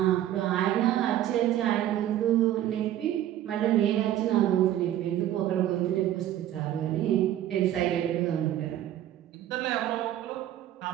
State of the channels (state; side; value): quieter; left; 12.4 dB